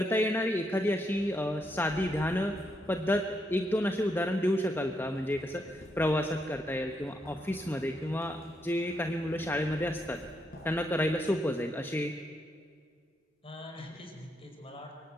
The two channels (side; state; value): both; normal; correlation 0.79